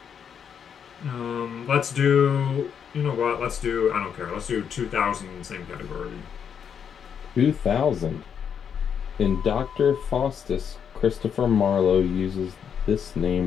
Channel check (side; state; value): right; quieter; 7.6 dB